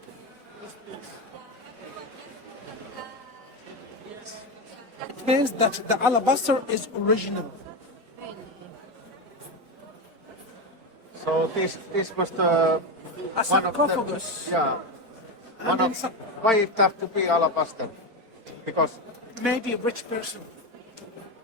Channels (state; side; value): late; left; 4.5 ms